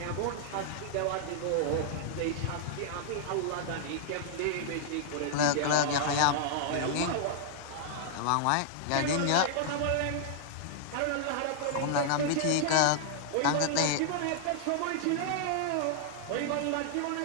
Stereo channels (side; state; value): both; different; correlation -0.01